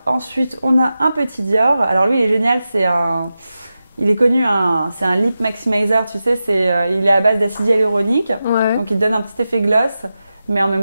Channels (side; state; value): both; inverted; correlation -0.92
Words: ensuite, on a un petit Dior. Alors lui, il est génial, il est connu, c'est un lip maximizer, tu sais, il est à base d'acide hyaluronique. Ouais. Donc il te donne un petit effet gloss, mais en